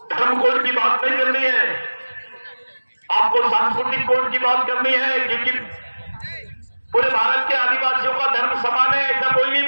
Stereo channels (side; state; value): both; inverted; correlation -1.00